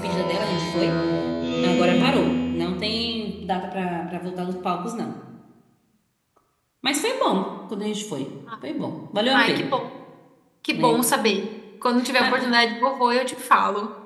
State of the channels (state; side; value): identical; both; correlation 1.00